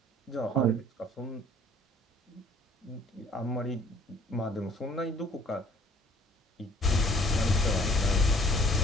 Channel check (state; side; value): normal; both; correlation 0.58